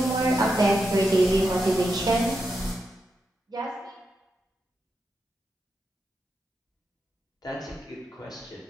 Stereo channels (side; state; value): both; normal; correlation 0.85